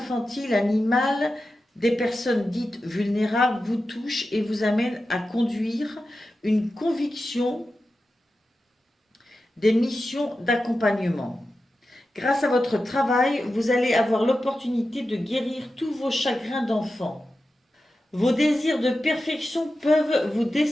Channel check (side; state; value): both; normal; correlation 0.92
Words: animales, des personnes dites vulnérables vous touchent et vous amènent à conduire une conviction des missions d'accompagnement. Grâce à votre travail, vous allez avoir l'opportunité de guérir tous vos chagrins d'enfant. Vos désirs de perfection peuvent vous